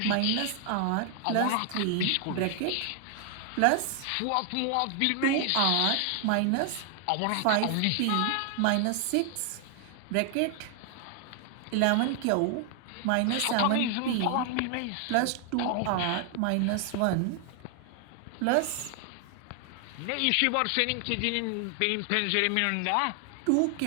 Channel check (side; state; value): both; different; correlation 0.00